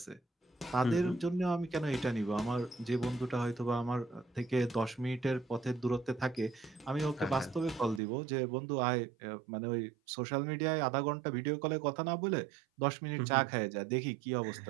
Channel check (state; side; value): drops out; left; at 8.0 s